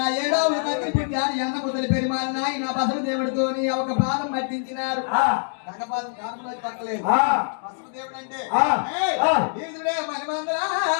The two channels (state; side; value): silent; right; digital silence